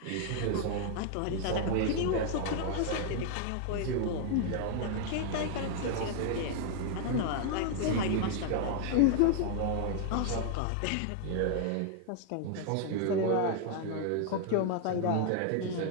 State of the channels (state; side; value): different; both; correlation 0.00